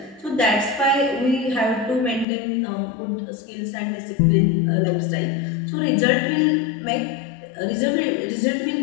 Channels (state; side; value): drops out; right; at 2.2 s